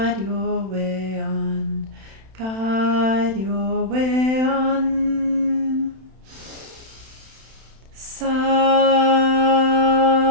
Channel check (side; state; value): left; late; 31 ms